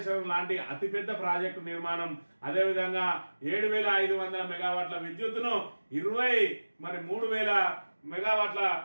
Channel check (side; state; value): both; inverted; correlation -1.00